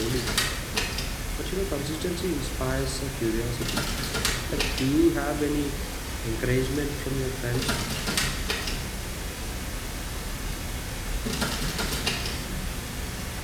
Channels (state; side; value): identical; both; correlation 1.00